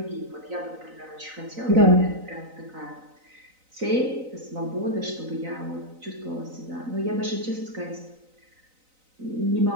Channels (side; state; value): left; late; 3.9 ms